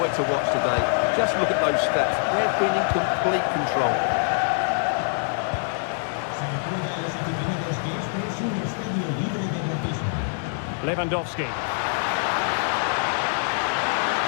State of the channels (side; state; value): right; silent; digital silence